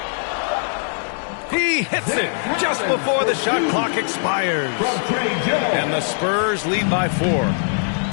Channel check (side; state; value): right; silent; digital silence